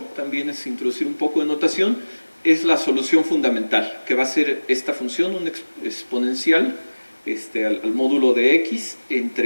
también es introducir un poco de notación, es la solución fundamental, que va a ser esta función, un exponencial al módulo de x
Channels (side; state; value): both; inverted; correlation -1.00